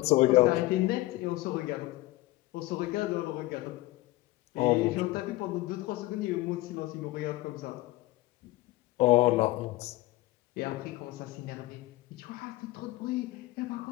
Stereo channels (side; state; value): right; quieter; 18.5 dB